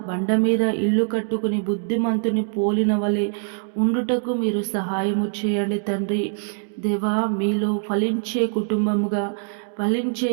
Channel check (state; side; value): silent; left; 63 dB below the other